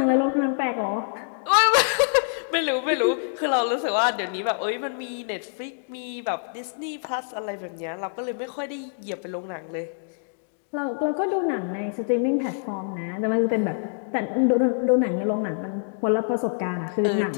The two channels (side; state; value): right; silent; digital silence